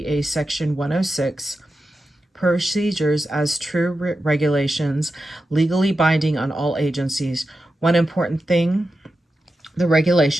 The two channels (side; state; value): both; normal; correlation 0.91